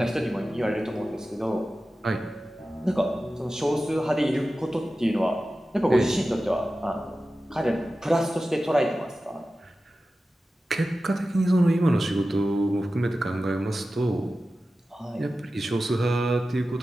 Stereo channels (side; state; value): both; normal; correlation 0.94